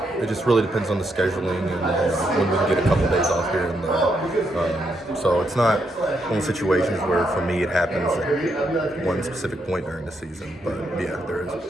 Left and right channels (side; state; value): both; normal; correlation 0.79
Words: It just really depends on the scheduling and when we can get a couple days off here and there. So it's not one of the situations where, for me, it happens at one specific point during the season. But yeah, there is.